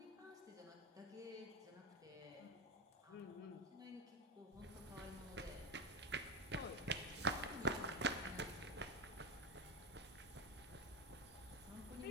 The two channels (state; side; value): normal; both; correlation 0.14